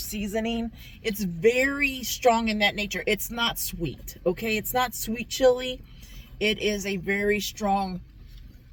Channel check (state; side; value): identical; both; correlation 1.00